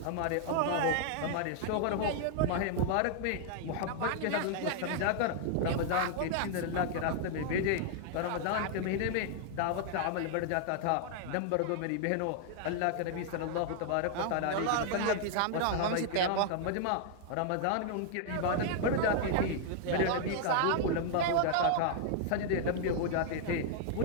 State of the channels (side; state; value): both; different; correlation 0.00